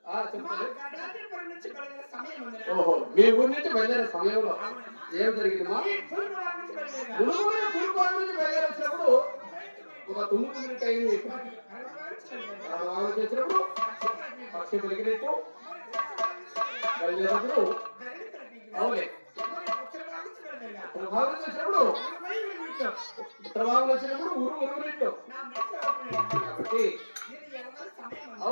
చెప్పండి. ఓహో మీ ఊరి నుంచి బయలుదేరే సమయంలో ఏం జరిగిందమ్మా? నుంచి బయలుదేరేసినప్పుడు ఒక 9 మినిట్ అయింది. చేసినప్పుడు పక్షి పెరిగినట్టు బయలుదేరినప్పుడు అవులే ప్రభావం చేసినప్పుడు ప్రభావం వచ్చినప్పుడు ఊరు ఉరుగునట్టు కాబట్టి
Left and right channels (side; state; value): both; inverted; correlation -1.00